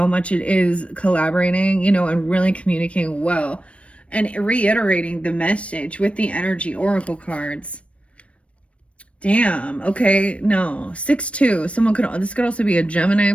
much it is collaborating, and really communicating well and reiterating the message with the energy oracle cards. Damn. Okay. No. 6-2. This could also be a Gemini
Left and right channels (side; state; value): right; late; 0.062 ms